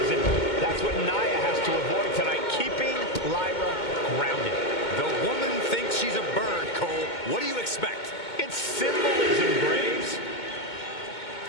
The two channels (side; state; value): right; late; 2.2 ms